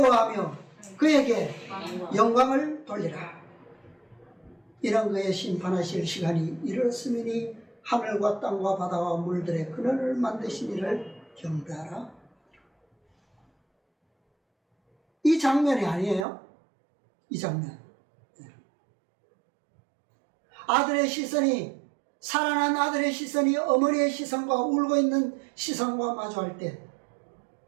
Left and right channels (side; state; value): left; drops out; at 16.2 s